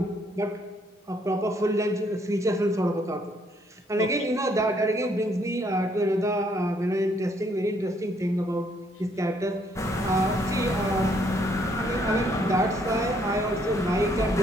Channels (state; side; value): normal; both; correlation 0.68